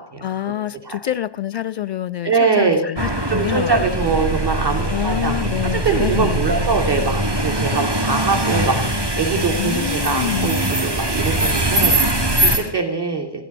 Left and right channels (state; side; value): late; left; 1.1 ms